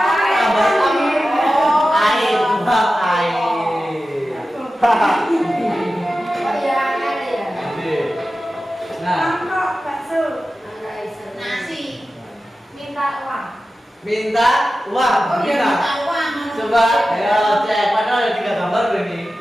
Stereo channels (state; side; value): normal; both; correlation 0.94